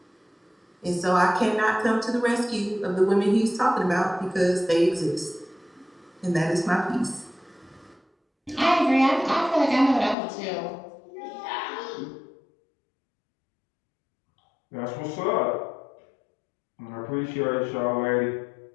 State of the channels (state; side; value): drops out; right; at 10.2 s